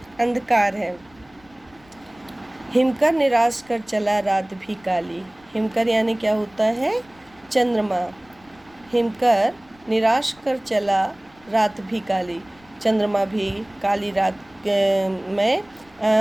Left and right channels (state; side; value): noise; left; rumble, 29 dB below the sound